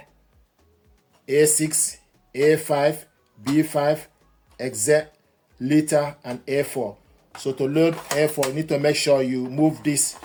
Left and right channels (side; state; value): both; identical; correlation 1.00